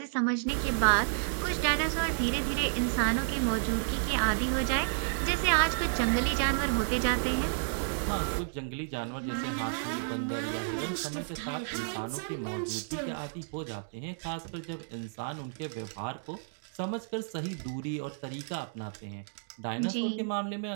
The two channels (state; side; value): silent; left; digital silence